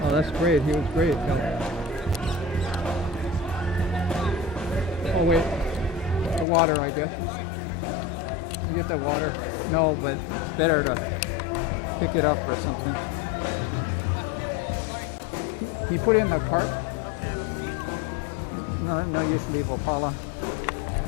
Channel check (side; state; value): right; drops out; at 6.5 s